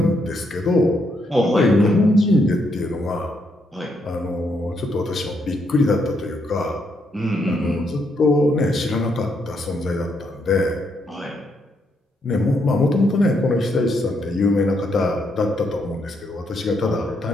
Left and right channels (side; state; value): both; normal; correlation 0.77